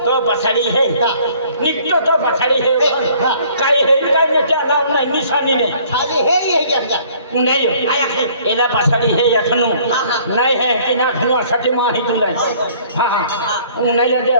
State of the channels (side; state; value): both; inverted; correlation -0.57